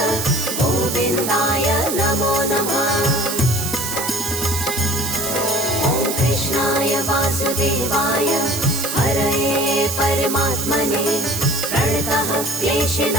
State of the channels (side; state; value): right; noise; hiss, 4 dB below the sound